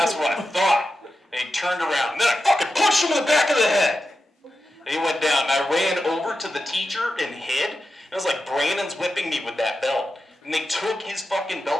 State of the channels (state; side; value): normal; both; correlation 0.90